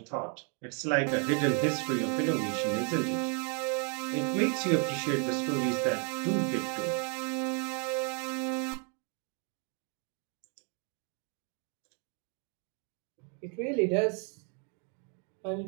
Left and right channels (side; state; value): left; quieter; 39.2 dB